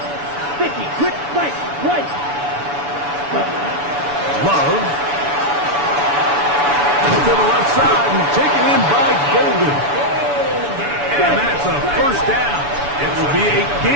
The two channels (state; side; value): late; left; 7.0 ms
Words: 50. Quick right. Right. Love. And to the left side and taken in by Golden. And that's a 1st down. It will be a